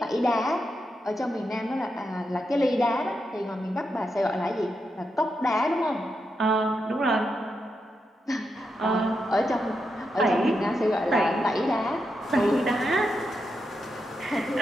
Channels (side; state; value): both; normal; correlation 0.85